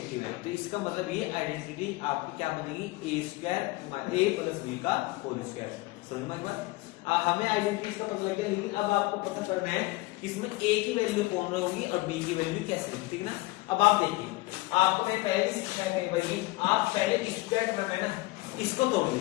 है, तो इसका मतलब ये आइडेंटिटी आपकी क्या बनेगी, a प्लस बी का होल स्क्वायर। समझ में एक बार, हमें आइडेंटिटी का पता लग गया, लेकिन अब आपको पता करना है कि इसमें a की वैल्यू कौन होगी और b की वैल्यू कैसे होगी, ठीक है ना। अब आप देखिए, आपको मैं पहले ही सिखाया कहीं भाई, आप पहले स्क्वायर टर्म है ना, इसको तोड़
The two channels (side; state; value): right; quieter; 21.4 dB